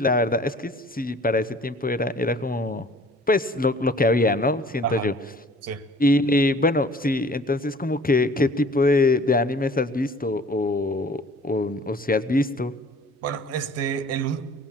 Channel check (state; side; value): normal; both; correlation 0.50